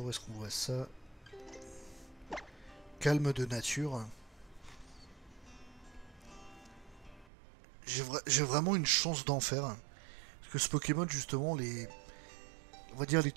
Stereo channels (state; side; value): drops out; left; at 7.2 s